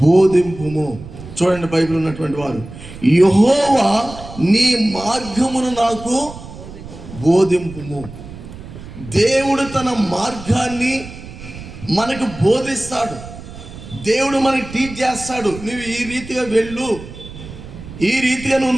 బోధింపుము. చూడండి, బైబిల్ ఉన్నటువంటి వారు, యెహోవా నీ మార్గమును నాకు బోధింపుము. దేవుడు తన మార్గాన్ని మనకు బోధిస్తాడు. దేవుడు మనకి టీచ్ చేస్తాడు. నువ్వు ఈ రీతిగా వెళ్ళు, ఈ రీతిగా నువ్వు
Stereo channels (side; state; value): right; noise; rumble, 14 dB below the sound